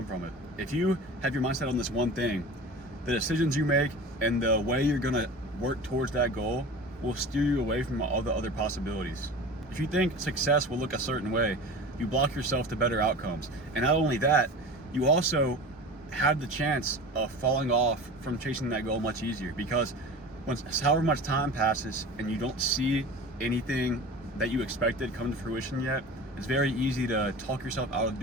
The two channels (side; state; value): both; normal; correlation 0.35